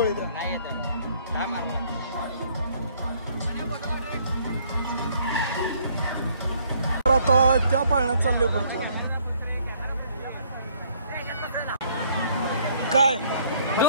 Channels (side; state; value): both; inverted; correlation -0.63